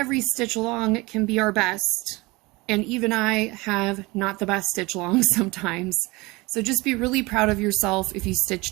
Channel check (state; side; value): quieter; left; 23.2 dB